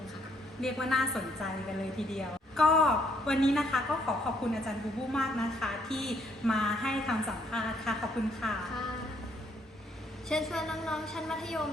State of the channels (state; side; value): normal; both; correlation 0.69